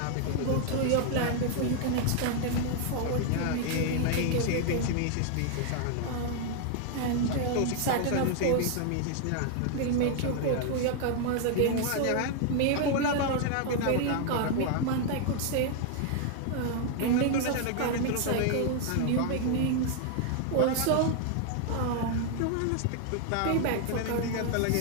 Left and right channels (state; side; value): different; both; correlation 0.00